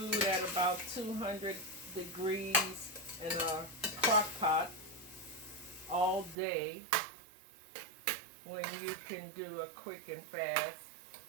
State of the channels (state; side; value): drops out; left; at 6.4 s